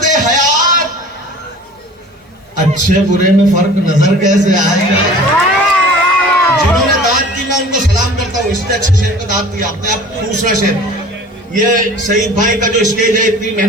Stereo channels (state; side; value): normal; both; correlation 0.44